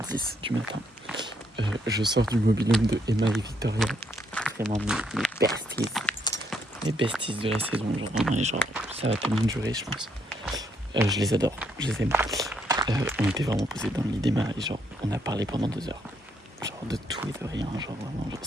du matin. Je sors du mobil-home de Emma et Victoria. Vraiment mes besties. Mes besties de la saison, genre vraiment, et genre ça va tellement durer, je pense. Je les adore, je les aime. On était vraiment posés dans le lit d'Emma et genre on a parlé pendant 2 heures. Genre de tout et de rien, genre vraiment, genre,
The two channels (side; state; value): both; normal; correlation 0.73